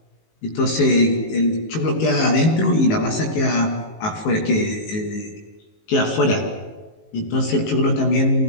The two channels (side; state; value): right; late; 19 ms